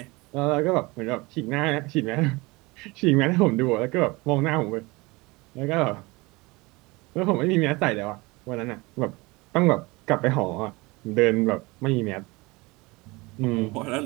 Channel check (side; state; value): left; quieter; 23.9 dB